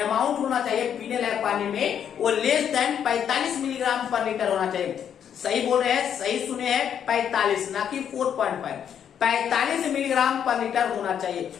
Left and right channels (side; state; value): right; quieter; 8.7 dB